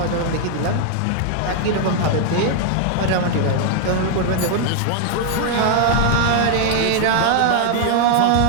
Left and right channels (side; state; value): both; different; correlation 0.00